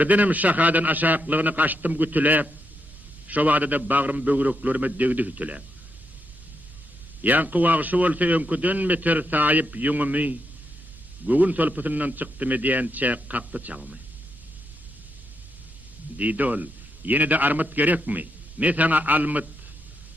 şahadan aşaklığını kaçtım gütülep, şo wagtda bagrym bögreklerime degdi hütülep. Yankı wagşy bolsa öňküden meter saýyp ýüňümi, gögün solpatyndan çykdym diýençe kakdy çagmy. Didol, ýene de armat gerekmi? Men sana almyt,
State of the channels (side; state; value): right; noise; rumble, 22 dB below the sound